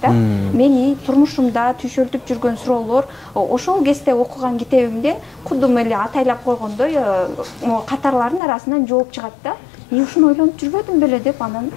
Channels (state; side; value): drops out; right; at 8.4 s